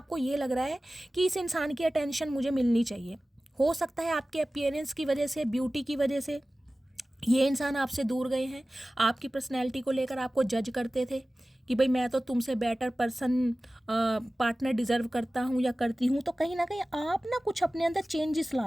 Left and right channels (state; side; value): normal; both; correlation 0.97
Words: ये लग रहा है कि इस इंसान की अटेंशन मुझे मिलनी चाहिए। हो सकता है आपके अपीयरेंस की वजह से, ब्यूटी की वजह से ये इंसान आपसे दूर गए हैं। आपकी पर्सनैलिटी को लेकर आपको जज करते थे कि भाई मैं तो तुमसे बेटर पर्सन पार्टनर डिज़र्व करता हूँ या करती हूँ। तो कहीं ना कहीं आप ना कुछ अपने अंदर चेंजेस